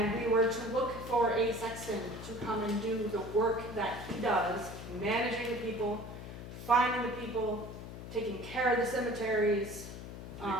we were to look for a sexton to come and do the work that he does, managing the people, finding the people, taking care of the cemeteries,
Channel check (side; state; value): left; noise; hum, 11 dB below the sound